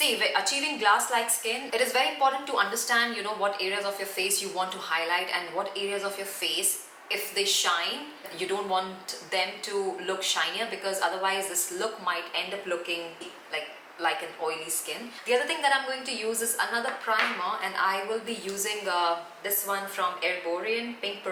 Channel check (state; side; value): identical; both; correlation 1.00